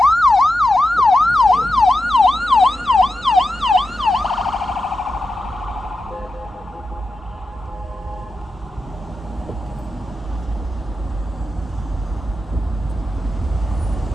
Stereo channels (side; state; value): both; normal; correlation 0.90